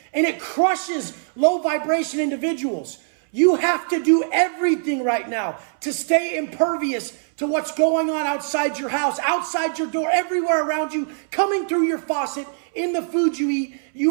and it crushes low vibration individuals. You have to do everything right now to stay impervious to what's going on outside your house, outside your door, everywhere around you, coming through your faucet, in the food you eat.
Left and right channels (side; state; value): left; silent; 64 dB below the other